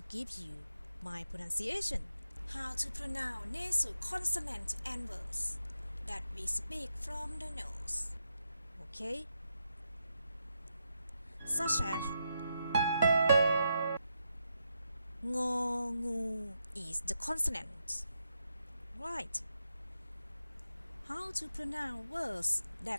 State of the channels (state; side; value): inverted; both; correlation -0.84